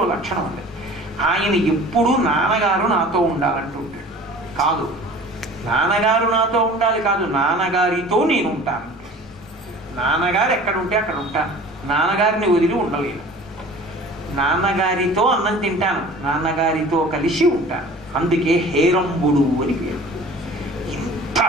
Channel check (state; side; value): normal; both; correlation 0.44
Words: ఒక లక్షణం ఉంది, ఆయన ఎప్పుడూ నాన్నగారు నాతో ఉండాలంటుంటాడు. కాదు, నాన్నగారు నాతో ఉండాలి కాదు, నాన్నగారితో నేను ఉంటాను. నాన్నగారు ఎక్కడ ఉంటే అక్కడ ఉంటాను, నాన్నగారిని వదిలి ఉండలేను. నాన్నగారితో అన్నం తింటాను, నాన్నగారితో కలిసి ఉంటాను. అందుకే హేరంబుడు అని పేరు. ఇంత